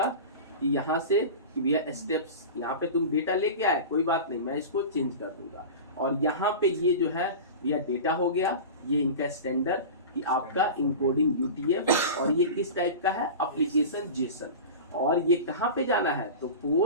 कि यहाँ से कि भैया स्टेप्स, यहाँ पे तुम डेटा लेके आए, कोई बात नहीं, मैं इसको चेंज कर दूंगा। और यहाँ पे ये जो है भैया डेटा हो गया, ये इनका स्टैंडर्ड कि आपका इंकोडिंग UTF, और ये किस टाइप का है, एप्लीकेशन जेसन। और ये कहाँ पे जाना है, तो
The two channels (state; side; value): inverted; both; correlation -0.30